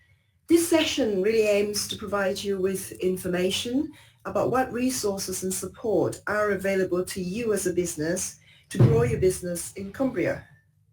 This session really aims to provide you with information about what resources and support are available to you as a business to grow your business in Cumbria.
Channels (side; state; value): both; identical; correlation 1.00